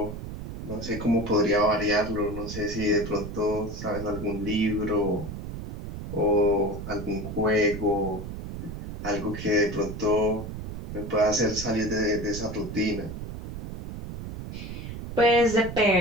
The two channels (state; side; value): noise; right; rumble, 8 dB below the sound